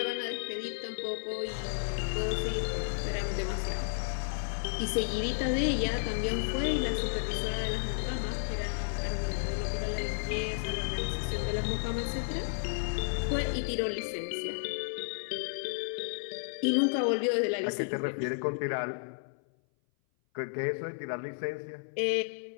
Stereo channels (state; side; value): silent; right; 56 dB below the other